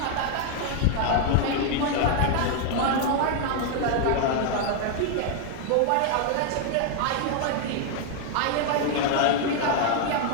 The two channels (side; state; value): both; different; correlation 0.00